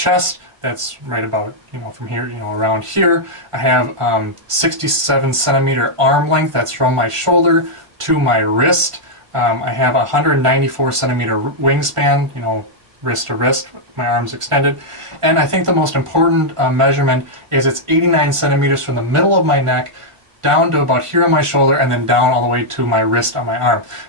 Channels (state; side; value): late; left; 1.5 ms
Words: That's right about, from here, around here. I have 67 centimeter arm length. That's from my shoulder to my wrist. I have a 194 centimeter wingspan, wrist to wrist, my arms extended. And I think the most important measurement is it's 89 centimeters from the middle of my neck down to about here on my shoulder, and then down all the way to my wrist on my arm.